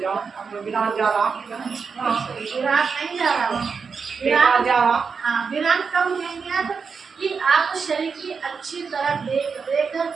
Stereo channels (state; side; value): quieter; left; 5.5 dB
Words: हम विराट जा रहा, विराट नहीं जा रहा, विराट जा रहा। हाँ, विराट कब लेंगे आप कि आप शरीर की अच्छी तरह देख रेख